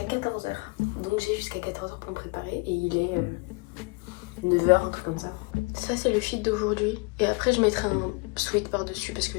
14h. Donc j'ai jusqu'à 14h pour me préparer et il est 9h, un truc comme ça. Ça c'est le fit d'aujourd'hui. Et après je mettrai un sweat par dessus parce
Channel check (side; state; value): right; quieter; 29.5 dB